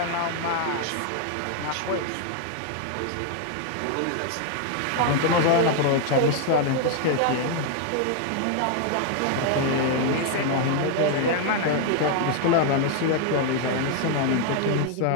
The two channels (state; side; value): different; both; correlation 0.00